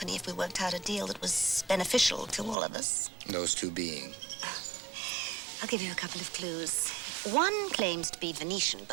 if we worked out a deal that was beneficial to all of us. Those two being? I'll give you a couple of clues. One claims to be Venetian,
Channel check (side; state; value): left; drops out; at 2.6 s